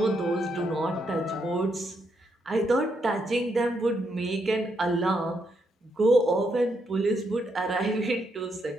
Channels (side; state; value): both; normal; correlation 0.78